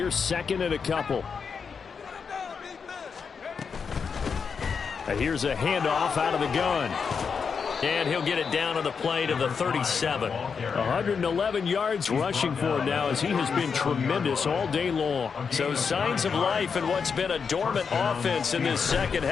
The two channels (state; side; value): quieter; right; 5.9 dB